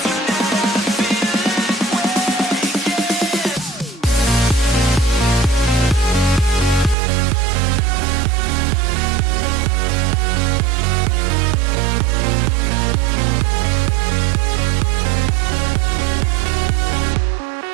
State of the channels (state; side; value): drops out; left; at 7.0 s